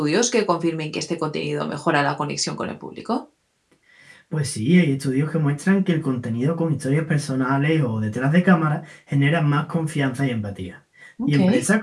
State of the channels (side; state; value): both; identical; correlation 1.00